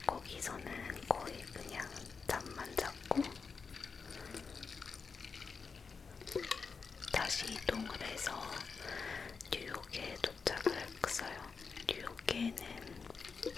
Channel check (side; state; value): right; quieter; 5.2 dB